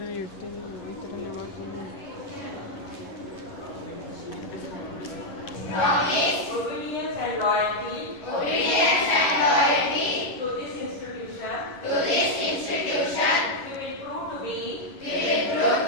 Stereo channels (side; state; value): right; late; 11 ms